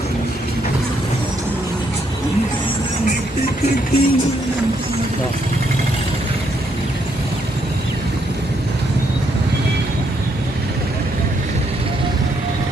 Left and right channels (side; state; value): both; normal; correlation 0.74